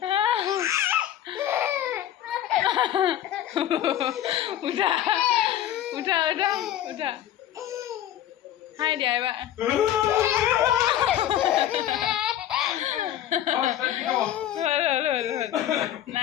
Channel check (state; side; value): quieter; right; 11.8 dB